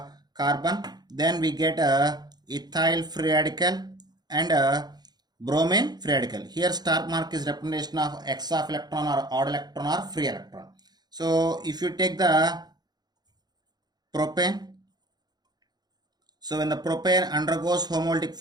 carbon. Then we get ethyl free radical and bromine free radical. Here star mark is representation of x of electron or odd electron or free electron. So if you take the propane, so when the propane undergoes homolytic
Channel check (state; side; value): late; left; 0.20 ms